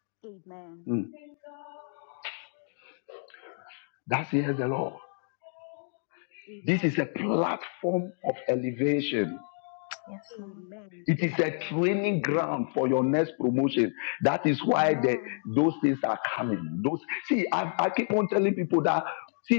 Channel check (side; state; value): right; silent; 58 dB below the other